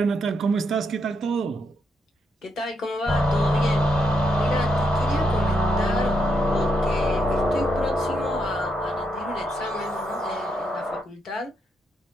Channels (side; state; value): both; normal; correlation 0.79